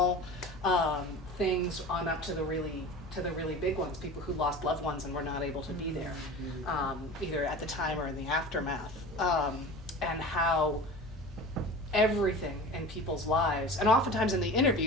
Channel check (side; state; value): both; normal; correlation 0.35